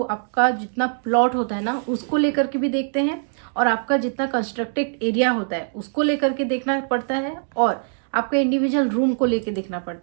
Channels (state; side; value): silent; left; digital silence